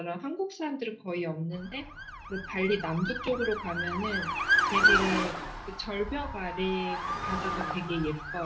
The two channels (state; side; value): identical; both; correlation 1.00